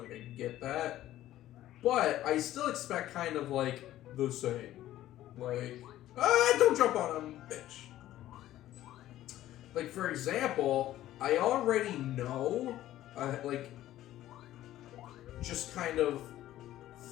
Like I get that, but I still expect kind of like the same. Like, don't jump on him, bitch. Like for example, I already know like just kind of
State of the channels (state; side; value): quieter; right; 13.9 dB